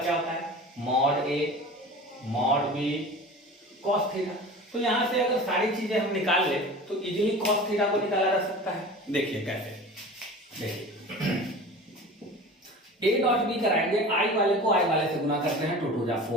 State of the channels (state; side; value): normal; both; correlation 0.37